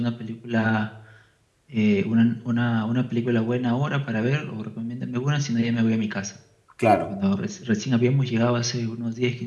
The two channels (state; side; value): identical; both; correlation 1.00